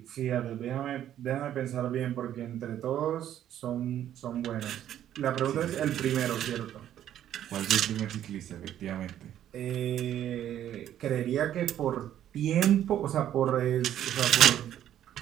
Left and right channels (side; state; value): left; quieter; 11.2 dB